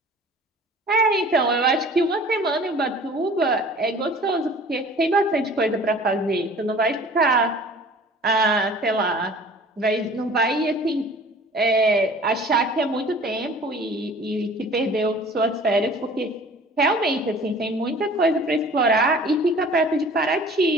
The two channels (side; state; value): both; normal; correlation 0.47